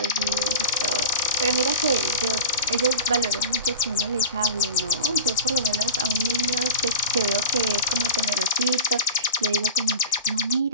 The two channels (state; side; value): inverted; both; correlation -0.31